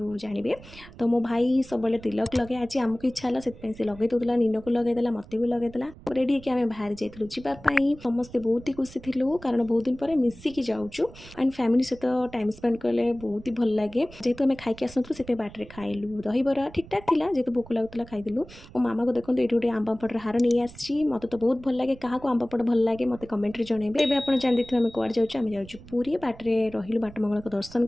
जानवे। तो मो भाई सब तिलक लगे आज आमको इच्छा है से लगे दूसरा नीन को लगेदेला मत भी लगेदेला रेडी होकर आम बाहर जाइलु जावाई समस्ते बहुत ही खुशी थिलु कारण बहुत दिन पर मिसिकी जाऊँ एंड फैमिली सहित टाइम स्पेंड कले बहुत ही भल लगे जेहेतु आम खाई आसलु से बाटर खाइलु दहीबरा ठीक ठाक थी जेहेतु भोक लगुला खाइदेलु। मो मामा को देखो ये गोटे आम पापड़ हार नहीं आसी मत तो बहुत भल लगे क्या आम पापड़ भल लगे मत कमेंट जनइबे। एवं आप जान देखिए आम कड़े जाऊँ जाऊँ पूरी बाटे रही बाट मंगल को दर्शन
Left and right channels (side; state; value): right; noise; rumble, 19 dB below the sound